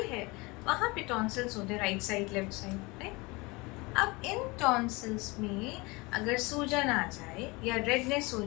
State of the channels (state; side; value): quieter; right; 25.0 dB